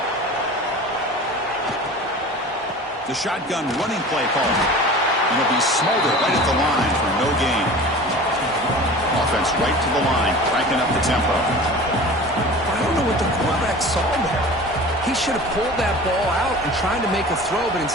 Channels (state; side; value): normal; both; correlation 0.38